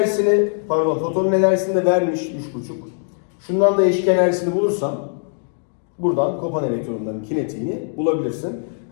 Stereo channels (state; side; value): silent; right; 62 dB below the other